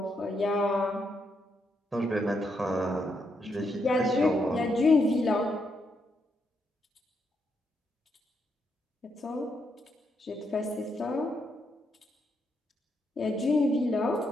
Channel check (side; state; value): both; normal; correlation 0.79